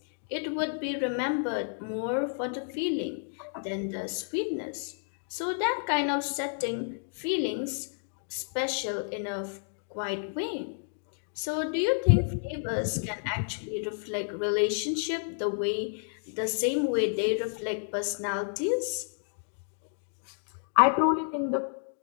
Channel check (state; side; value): silent; right; digital silence